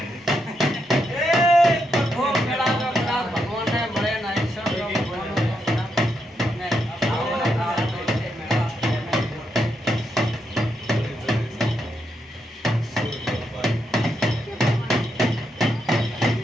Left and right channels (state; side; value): normal; both; correlation 0.81